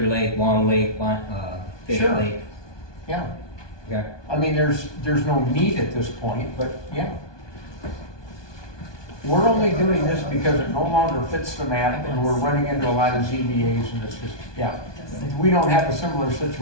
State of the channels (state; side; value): late; right; 1.2 ms